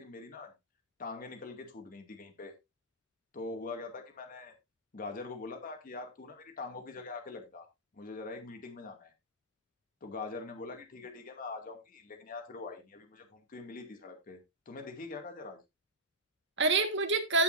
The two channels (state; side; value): normal; both; correlation -0.14